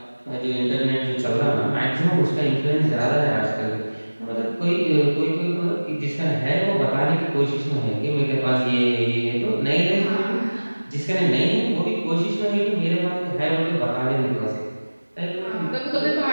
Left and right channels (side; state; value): both; inverted; correlation -1.00